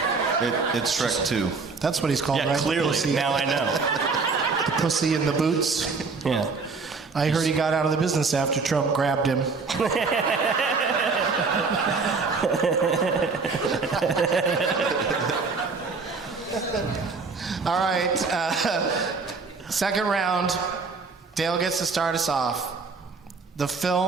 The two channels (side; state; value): left; quieter; 4.5 dB